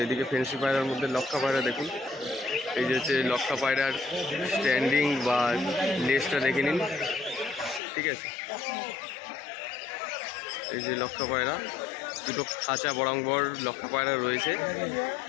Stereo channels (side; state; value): right; drops out; at 7.8 s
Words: এদিকে ফেন্সি পায়রার মধ্যে লক্ষা পায়রা দেখুন। এই যে হচ্ছে লক্ষা পায়রার স্ট্যান্ডিং বা লেজটা দেখে নিন, ঠিক আছে। এই যে লক্ষা পায়রা, দুটো খাঁচা বরাঙ্গর লক্ষা পায়রা রয়েছে।